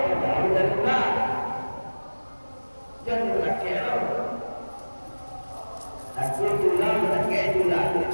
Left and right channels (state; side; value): inverted; both; correlation -1.00